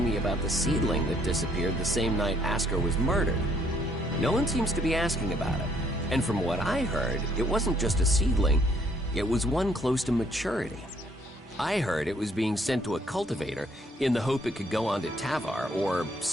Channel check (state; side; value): normal; both; correlation 0.66